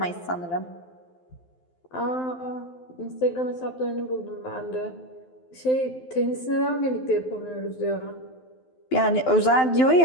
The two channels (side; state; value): right; late; 12 ms